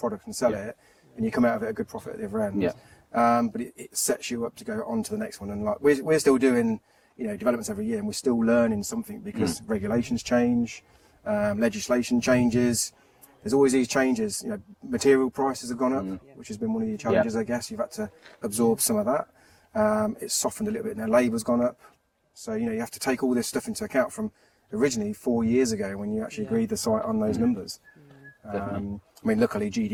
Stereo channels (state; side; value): identical; both; correlation 1.00